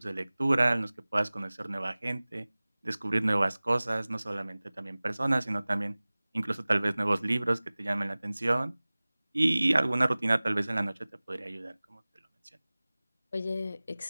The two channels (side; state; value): both; inverted; correlation -0.99